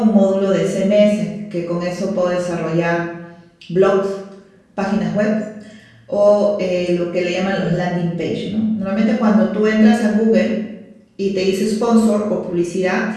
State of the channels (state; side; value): identical; both; correlation 1.00